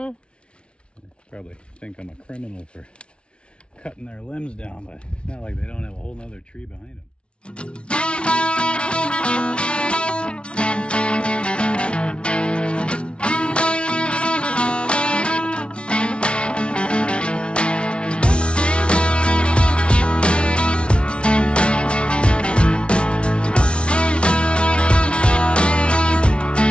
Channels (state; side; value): late; right; 0.058 ms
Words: Probably think I'm a criminal for cutting their limbs down, but it's not like they don't have a whole nother tree behind them.